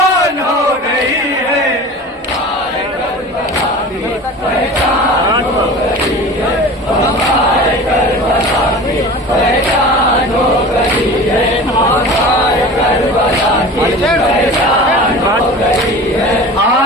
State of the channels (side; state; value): both; normal; correlation 0.37